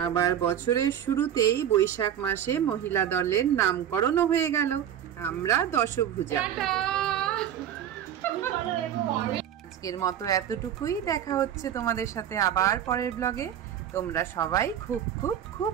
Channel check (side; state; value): left; quieter; 10.0 dB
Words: আবার বছরের শুরুতেই বৈশাখ মাসে মহিলা দলের নামকরণও হয়ে গেল। আমরা দশভুজা। আজকের মতো এতটুকুই। দেখা হচ্ছে তোমাদের সাথে আবার পরের ব্লগে। তোমরা সবাই খুব খুব খুব